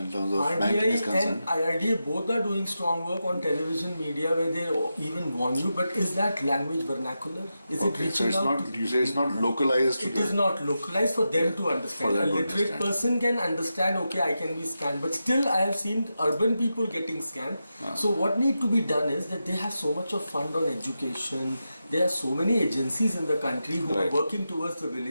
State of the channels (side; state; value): both; inverted; correlation -0.89